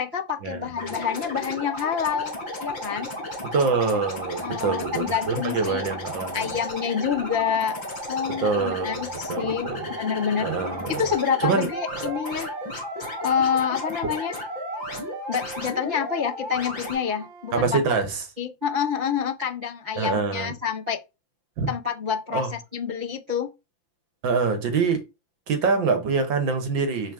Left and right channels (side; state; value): left; late; 5.9 ms